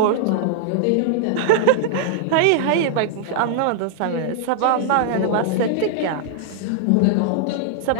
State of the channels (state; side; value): different; both; correlation -0.01